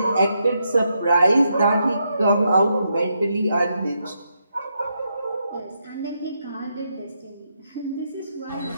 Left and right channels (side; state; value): both; inverted; correlation -0.81